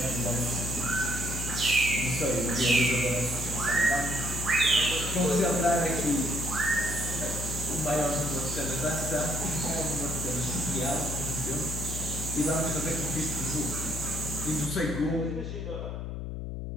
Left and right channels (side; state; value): left; noise; hum, 5 dB below the sound